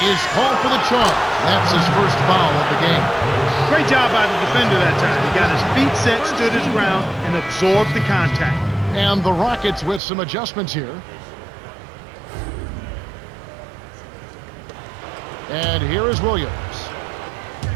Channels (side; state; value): left; drops out; at 10.0 s